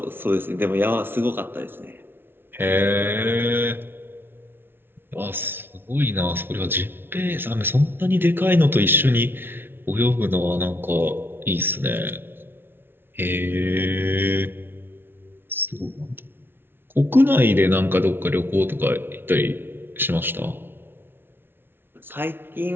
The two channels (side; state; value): left; late; 0.11 ms